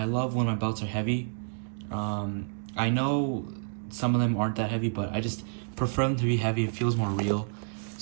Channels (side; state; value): left; silent; digital silence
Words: love when my belts are heavy. I know some of them aren't that heavy, but I just prefer them to be heavy. It feels more real.